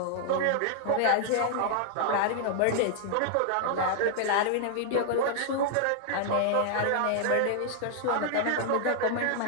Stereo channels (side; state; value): both; different; correlation -0.01